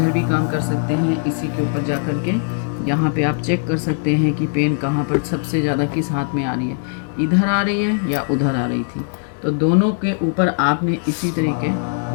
भी काम कर सकते हैं। इसी के ऊपर जा कर के यहाँ पे आप चेक कर सकते हैं कि पेन कहाँ पर सबसे ज़्यादा किस हाथ में आ रही है, इधर आ रही है या उधर आ रही थी। तो दोनों के ऊपर आपने इसी तरीके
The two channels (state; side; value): silent; right; 66 dB below the other